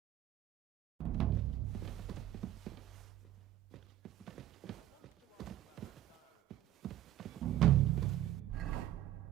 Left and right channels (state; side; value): quieter; left; 13.4 dB